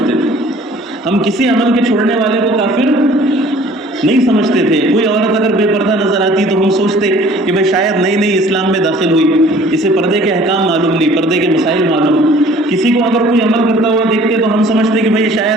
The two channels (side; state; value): both; normal; correlation 0.52